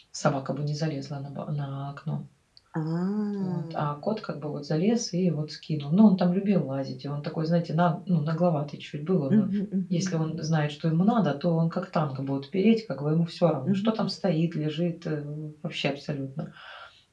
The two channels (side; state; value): both; identical; correlation 1.00